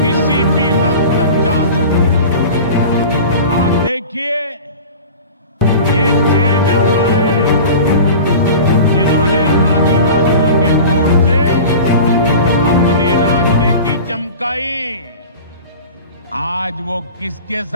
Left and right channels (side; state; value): both; inverted; correlation -0.36